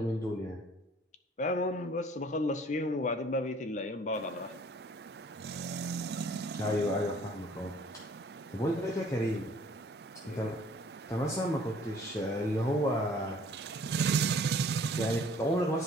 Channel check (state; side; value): normal; both; correlation 0.55